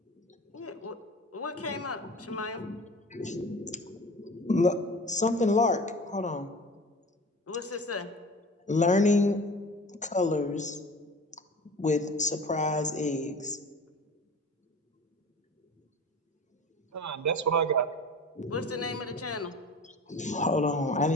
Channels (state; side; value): normal; both; correlation 0.38